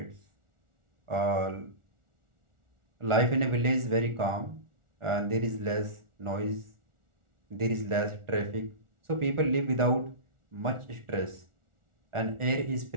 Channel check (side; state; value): left; late; 1.4 ms